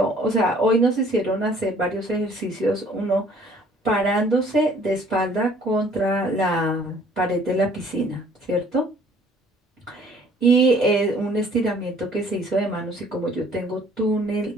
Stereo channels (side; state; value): both; normal; correlation 0.57